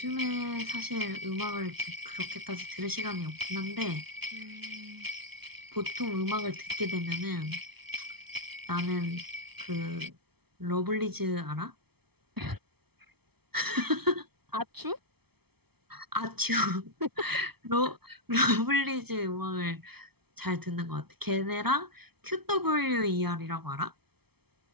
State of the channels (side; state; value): left; late; 0.97 ms